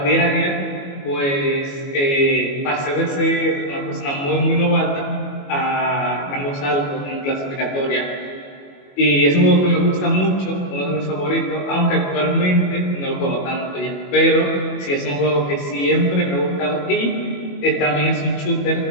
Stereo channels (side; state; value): right; late; 22 ms